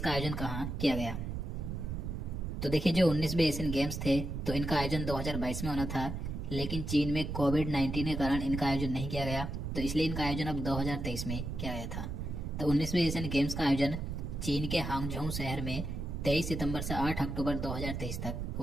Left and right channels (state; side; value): noise; right; rumble, 4 dB below the sound